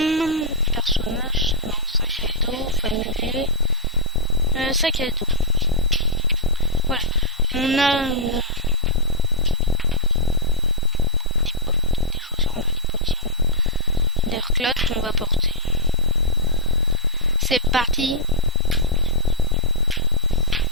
Personnage. Non, sac à dos. Familier. Sac à dos. Voilà. On a... des chaussures, on a des bottillons. Des reclates qu'on va porter. C'est parti.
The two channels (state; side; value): normal; both; correlation -0.09